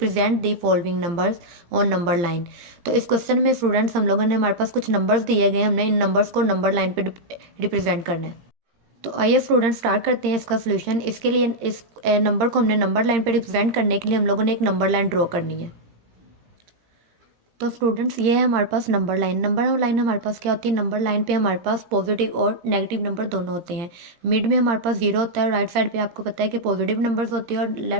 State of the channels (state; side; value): late; left; 17 ms